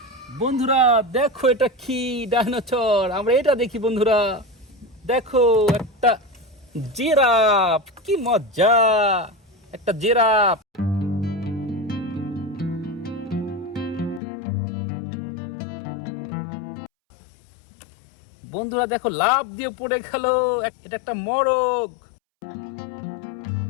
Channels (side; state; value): right; drops out; at 14.2 s